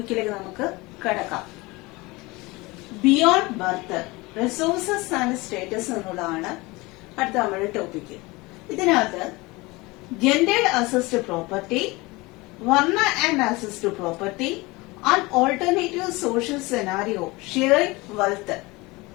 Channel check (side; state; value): right; quieter; 23.1 dB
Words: നമുക്ക് കടക്കാം. Beyond birth resources and status എന്നുള്ളതാണ് അടുത്ത നമ്മുടെ ടോപ്പിക്ക്. ഇതിനകത്ത് ജെൻഡേർഡ് അസിസ്റ്റ് പ്രോപ്പർട്ടി, വർണ്ണ and assist property and alternative social scenario, sharing wealth,